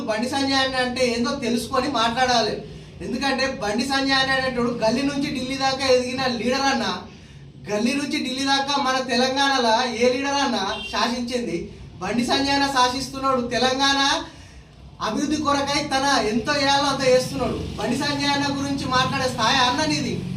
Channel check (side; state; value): both; identical; correlation 1.00